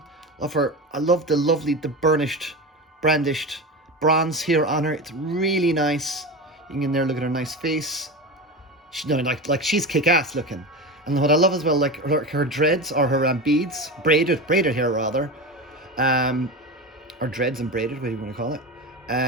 I love the lovely, the burnished, brandished bronze here on her. It's really nice. You can get in there, look at her nice face. She, no, like she's kick-ass looking. And what I love as well, like her dreads or her beads, braided hair rather, or dreads and braided, whatever you want to call it.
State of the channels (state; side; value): normal; both; correlation 0.24